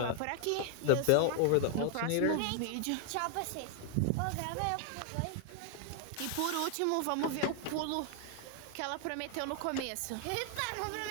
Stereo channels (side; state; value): both; different; correlation 0.00